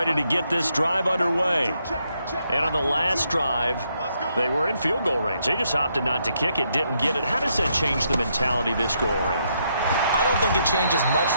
to get this drive underway. And on the last drive, they were in field goal range. They just opted not to kick it, didn't get it. How does that change the mentality this go around? I don't think it changes much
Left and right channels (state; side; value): inverted; both; correlation -0.77